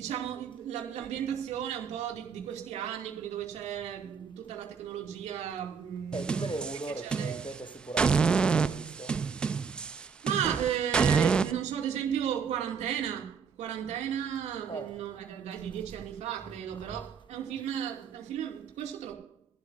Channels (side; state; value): left; quieter; 6.4 dB